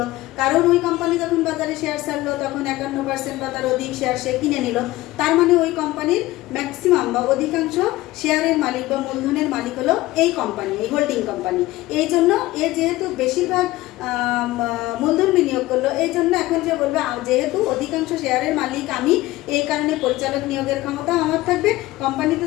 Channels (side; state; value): right; quieter; 17.8 dB